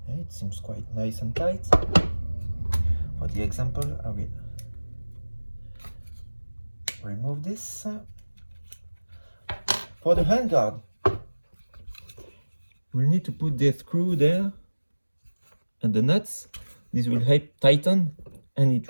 It seems quite nice and tight. For the example, I will remove this. For the handguard, we'll need to put the screw there and the nuts. This will help tighten and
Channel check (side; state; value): both; inverted; correlation -1.00